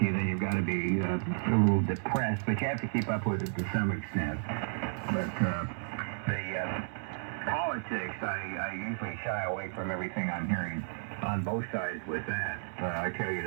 then you've got to be a little depressed. But you have to keep up with it to some extent. But the politics, I usually shy away from everything I'm hearing on both sides with that. I tell you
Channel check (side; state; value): left; silent; 56 dB below the other